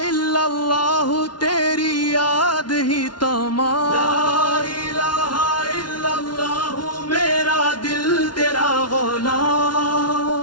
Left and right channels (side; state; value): right; late; 0.70 ms